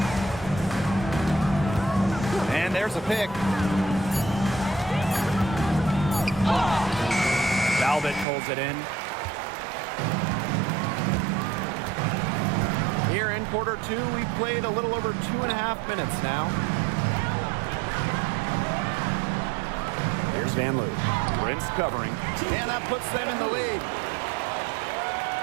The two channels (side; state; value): left; drops out; at 8.2 s